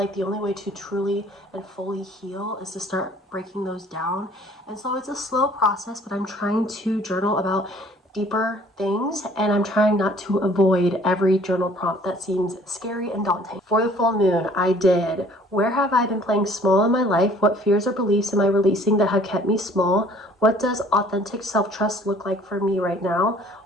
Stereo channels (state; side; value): normal; both; correlation 0.55